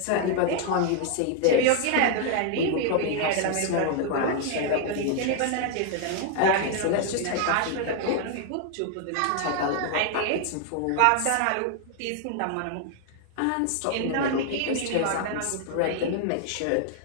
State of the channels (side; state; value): both; different; correlation 0.00